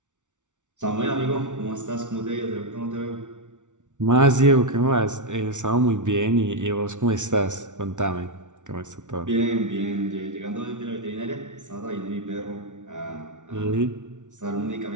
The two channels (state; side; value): late; left; 0.86 ms